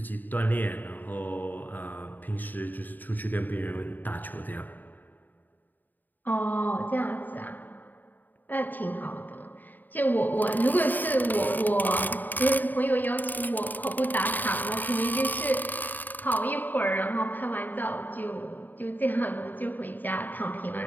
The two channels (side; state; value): right; late; 0.088 ms